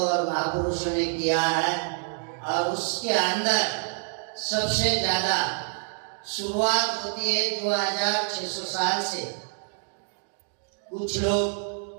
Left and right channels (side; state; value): left; silent; 60 dB below the other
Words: और महापुरुषों ने किया है। और उसके अंदर सबसे ज्यादा शुरुआत होती है 2600 साल से। कुछ